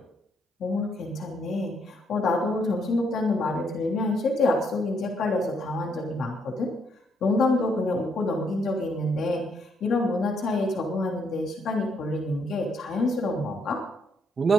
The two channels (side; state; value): both; normal; correlation 0.73